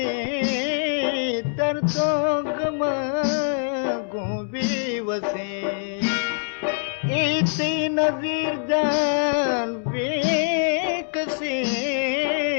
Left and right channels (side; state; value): right; silent; 63 dB below the other